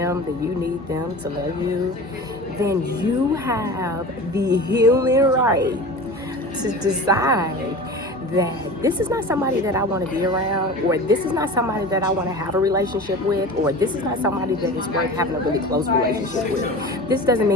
that you need them to love you, then you have the healing right to decide that this is not somebody that I want to be around, or this is not somebody that I want to have a relationship with, or this is not somebody that is worth having a really close relationship with. This doesn't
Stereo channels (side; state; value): both; normal; correlation 0.34